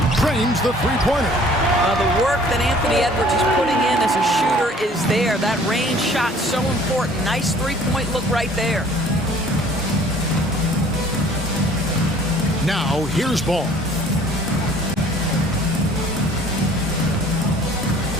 Drains the three-pointer. The work that Anthony Edwards is putting in as a shooter is there. That range shot so important. Nice three-point look right there. Now here's Ball.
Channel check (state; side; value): normal; both; correlation 0.53